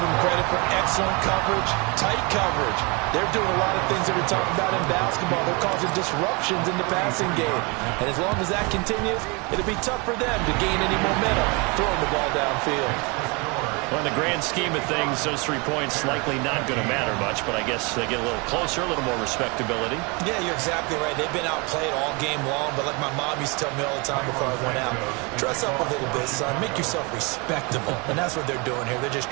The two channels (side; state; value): left; quieter; 29.3 dB